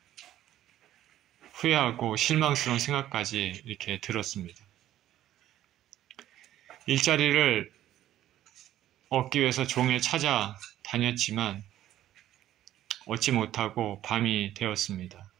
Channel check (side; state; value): left; quieter; 12.8 dB